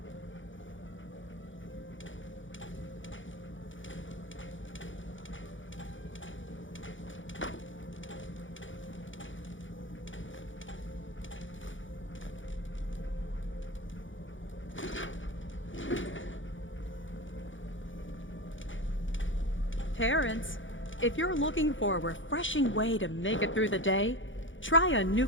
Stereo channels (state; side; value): late; right; 0.56 ms